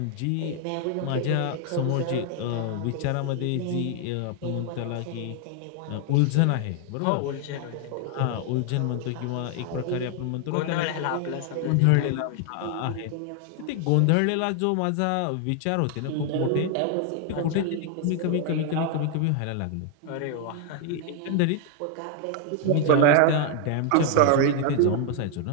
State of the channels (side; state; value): both; different; correlation 0.00